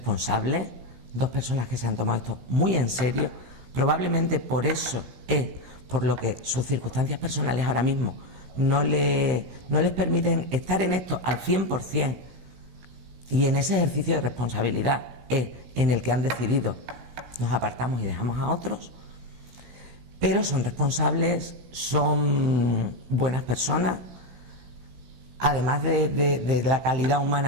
2 personas que se han tomado esto muy en serio. Probablemente por eso es por lo que sus circunstancias personales ahora mismo no les permiten estar en esto al 100%, y en ese ejercicio de responsabilidad es en el que han decidido nos apartamos y dejamos a otros, pero son responsables, son buenas personas. Además de la calidad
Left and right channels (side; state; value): left; late; 16 ms